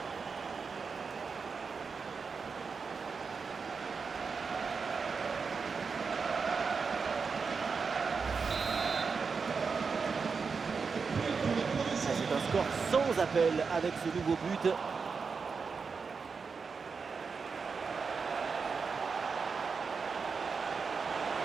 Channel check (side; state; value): left; quieter; 5.2 dB